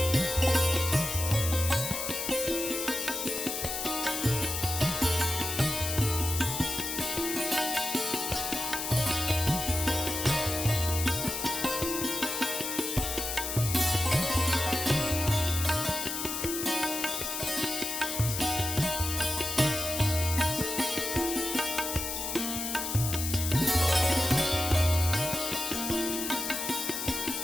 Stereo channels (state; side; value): noise; left; hiss, 3 dB below the sound